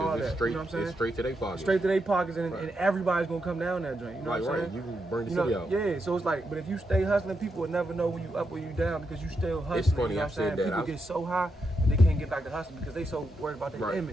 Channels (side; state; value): both; normal; correlation 0.83